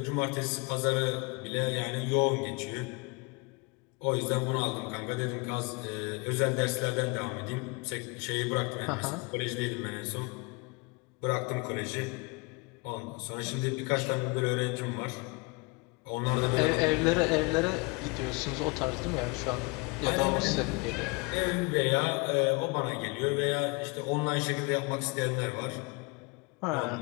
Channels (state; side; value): quieter; right; 28.4 dB